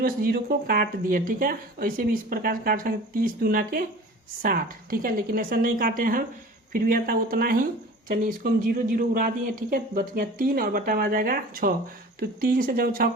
से 0 को काट दिए। ठीक है, ऐसे भी इस प्रकार से काट सकते 30 दूना के 60। ठीक है, लेकिन ऐसा नहीं काटे हम, फिर भी आता उतना ही। चलिए इसको हम 0 उड़ा दिए। ठीक है, बच गया 3 और बटा में आ जाएगा 6। तो 3 से जब 6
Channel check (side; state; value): both; normal; correlation 0.41